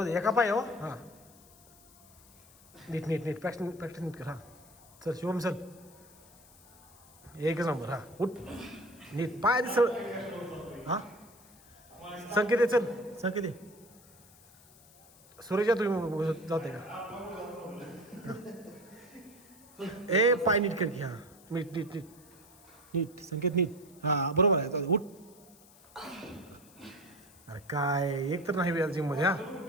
दे एका पाय. हो हां नीट नीट नीट प्रॅक्टिस नीट कर. हां चल शिवम चल. एकच नंबर. हां उठ नीट पाय दिसळ. हां संकेत आहे चल. संकेत आहे. सूर्यच्या तुम्ही जाते का. ए पाय नीट कर की. हां नीट नीट नीट नीट संकेत नीट. हां बरोबर आहे. उठ. अरे काय एक तर नाही वेळ जिममध्ये.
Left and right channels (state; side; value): noise; left; hiss, 25 dB below the sound